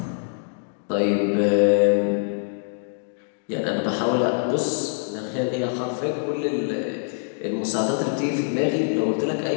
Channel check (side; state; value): right; silent; digital silence